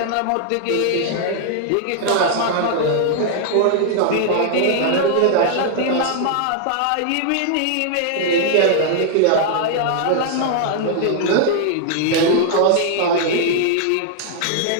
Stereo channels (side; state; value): both; different; correlation -0.01